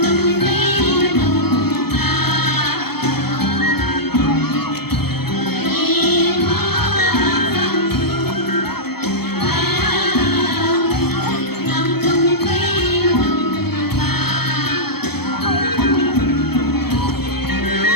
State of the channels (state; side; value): late; right; 0.96 ms